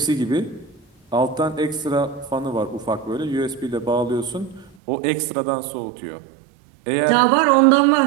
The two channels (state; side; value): drops out; left; at 4.8 s